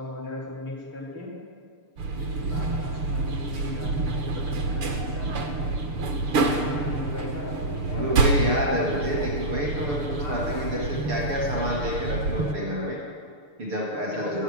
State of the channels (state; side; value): late; left; 6.8 ms